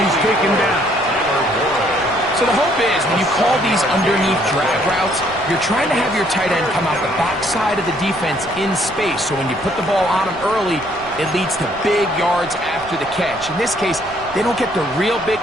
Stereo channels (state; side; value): noise; left; rumble, 20 dB below the sound